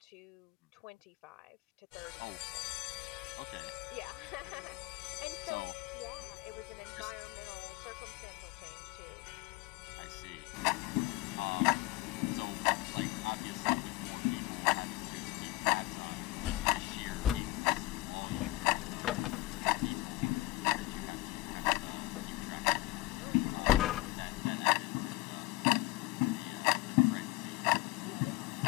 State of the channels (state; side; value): quieter; right; 19.0 dB